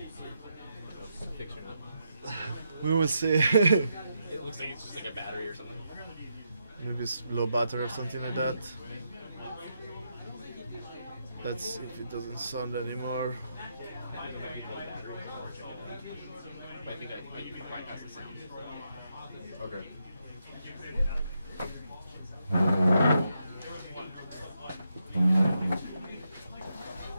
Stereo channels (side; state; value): both; inverted; correlation -0.82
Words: Fix or not? we will see. It looks like it's just like a battery or something. Maybe it's low battery or something like that. Let's see if it doesn't sound anymore. But I think you can bypass the sound. Okay.